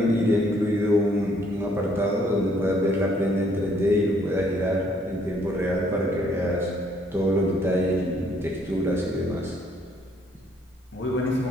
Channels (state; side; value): normal; both; correlation 0.65